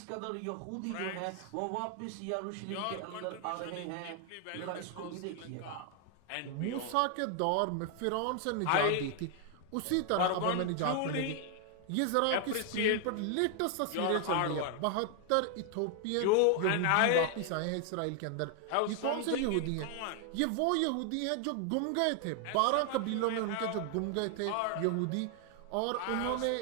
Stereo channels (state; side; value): different; both; correlation 0.00